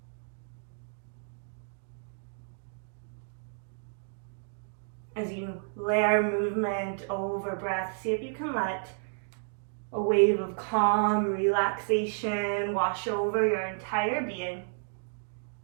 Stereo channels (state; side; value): silent; left; digital silence